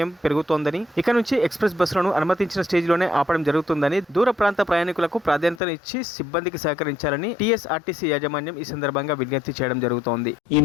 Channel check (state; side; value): drops out; right; at 5.6 s